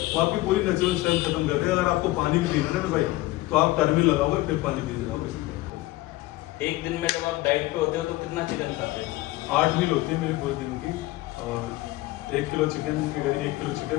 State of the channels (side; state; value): right; quieter; 18.5 dB